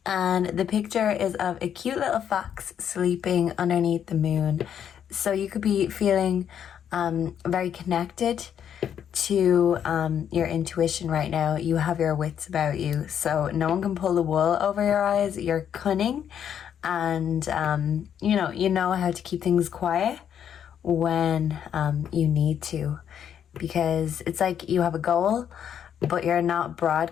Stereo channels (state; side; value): quieter; right; 8.9 dB